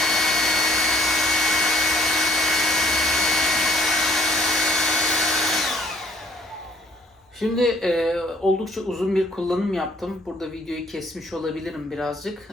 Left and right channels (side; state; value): both; normal; correlation 0.62